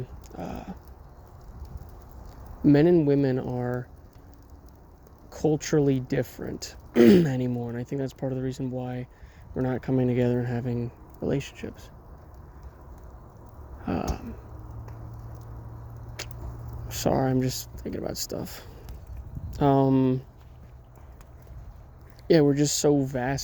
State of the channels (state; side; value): identical; both; correlation 1.00